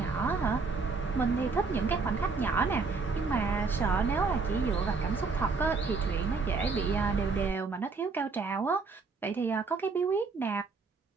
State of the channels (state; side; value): quieter; left; 4.5 dB